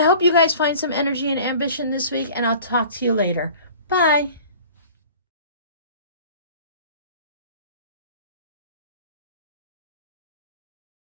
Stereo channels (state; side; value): inverted; both; correlation -0.45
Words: hope you guys find some energy and ambition this week, and I'll talk to you later. Bye.